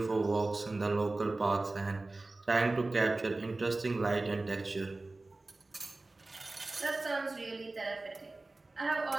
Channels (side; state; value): left; quieter; 3.1 dB